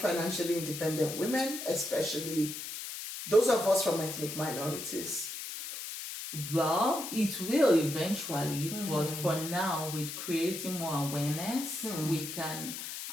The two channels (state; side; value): noise; left; hiss, 7 dB below the sound